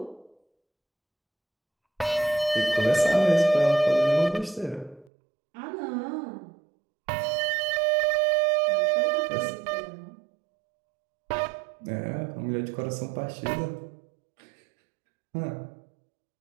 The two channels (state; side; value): drops out; left; at 5.1 s